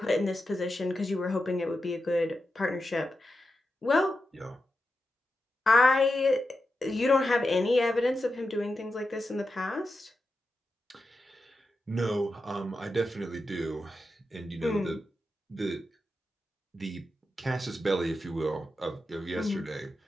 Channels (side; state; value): both; normal; correlation 0.89